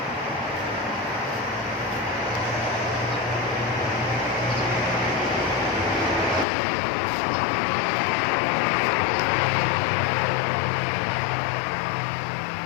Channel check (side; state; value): right; drops out; at 6.5 s